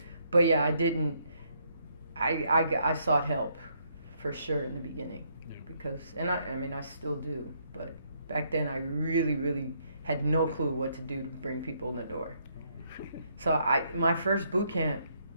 but yeah, I didn't. I sought help for sure in the beginning because, and I mean, I still do. But back then, I really, really had no clue what to do to bring people in the door. So my first boot camp,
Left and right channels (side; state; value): both; inverted; correlation -0.72